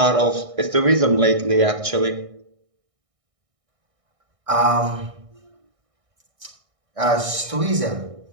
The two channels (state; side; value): late; left; 1.6 ms